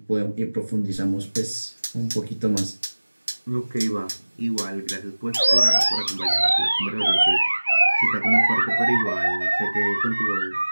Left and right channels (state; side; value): inverted; both; correlation -1.00